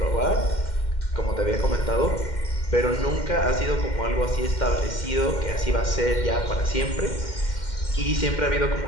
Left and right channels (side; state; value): right; late; 2.1 ms